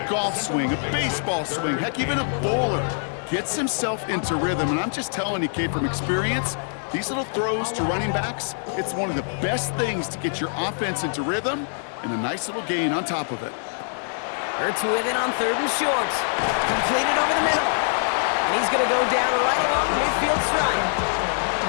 golf swing, a baseball swing, heck, even a bowler gets himself into rhythm. And I'm just telling you, Kate, from experience, these little throws to running backs, it's one of the best things to get your offense into rhythm and a nice little gain on top of it. Hurts with it on 3rd and short. Completed over the middle. And he's going to go down right along the midfield stripe.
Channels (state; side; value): silent; right; digital silence